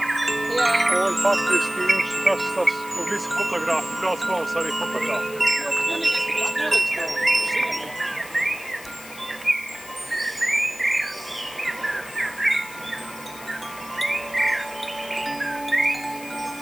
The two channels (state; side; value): noise; left; hiss, 16 dB below the sound